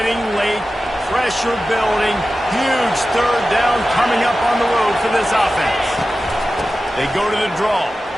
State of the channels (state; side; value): normal; both; correlation 0.94